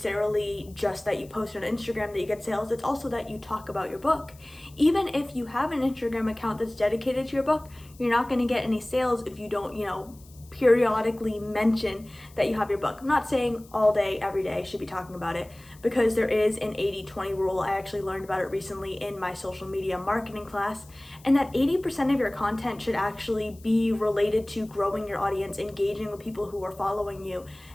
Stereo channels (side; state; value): left; noise; hiss, 25 dB below the sound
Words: just that you post on Instagram that you get sales, it's also that you talk about your book. Even if you have an Instagram account that's dedicated to your book, you're not going to get any sales if you don't, periodically mention that you have your book. I'm not saying all day, every day should be talking about it, because there is an 80-20 rule. I actually learned about it recently in my social media marketing class, and that 80% of your content should actually be related to growing your audience, engaging with people who are following you,